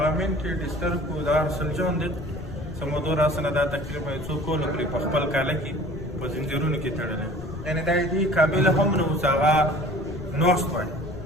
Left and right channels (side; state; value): left; noise; rumble, 11 dB below the sound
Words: منټي ډسټرب و دا ارسل جان دی چې موضوع راسنه دا تقریبا څو کاله پورې په خپل کاله کې په زنځیرونو کې تړلی یعنې دا دې قابل هم نه و چې هغه ناست وای